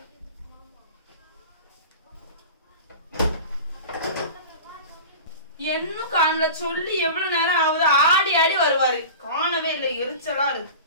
என்னும் காணல, சொல்லி எவ்வளவு நேரம் ஆகுது. ஆடி ஆடி வருவாரு, காணவே இல்லை. எரிச்சலா இருக்கு.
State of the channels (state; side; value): inverted; both; correlation -0.35